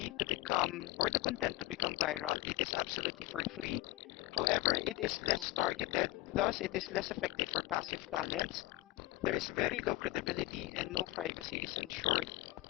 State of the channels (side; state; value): right; quieter; 18.4 dB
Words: to become, or the content to become viral. It is absolutely for free. However, it is less targeted, thus it is less effective for passive talents. There is very low credibility and no privacy is ensured.